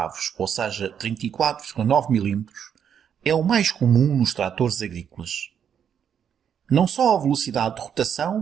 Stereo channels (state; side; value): quieter; left; 8.3 dB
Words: ou seja, 34,9 mm, é o mais comum nos tratores agrícolas. Não só a velocidade de